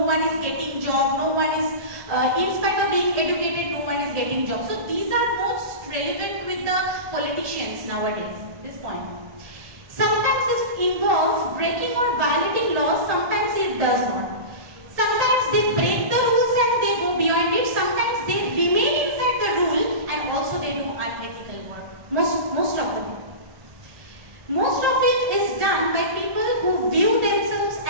one is getting job, no one is, in spite of being educated, no one is getting job. So these are most relevant with the politicians nowadays, this point. Sometimes it involves breaking or violating laws, sometimes it does not. Sometimes they break the rules and they go beyond it, sometimes they remain inside the rule and also they do unethical work. Most of the time. Most of it is done by people who view themselves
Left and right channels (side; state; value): left; late; 1.8 ms